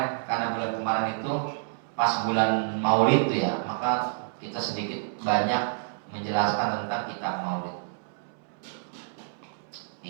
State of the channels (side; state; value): left; silent; 59 dB below the other